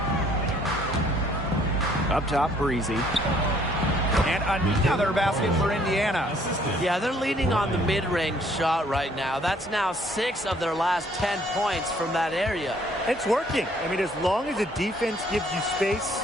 Up top, Breezy. And another basket for Indiana. Yeah, they're leaning on the mid-range shot right now. That's now 6 of their last 10 points from that area. It's working. I mean, as long as the defense gives you space,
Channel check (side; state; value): both; normal; correlation 0.62